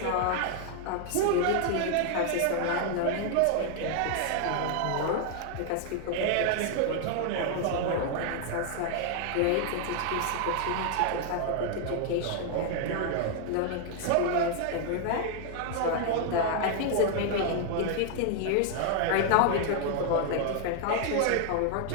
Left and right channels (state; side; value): different; both; correlation 0.00